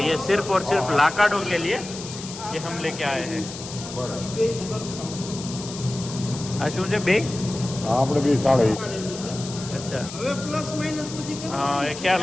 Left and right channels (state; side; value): noise; left; hiss, 11 dB below the sound